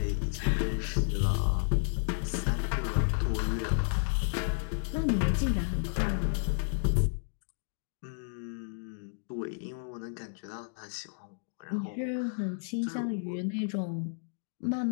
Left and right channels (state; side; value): silent; right; digital silence